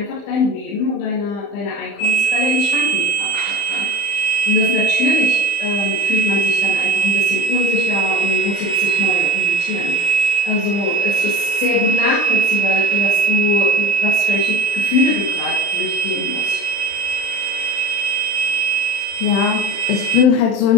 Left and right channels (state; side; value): late; right; 35 ms